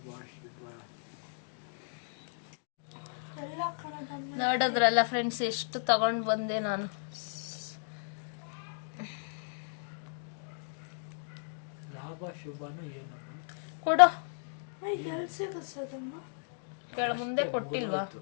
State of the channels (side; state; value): right; silent; digital silence